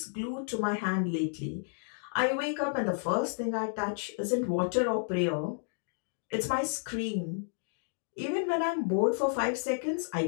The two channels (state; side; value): silent; right; digital silence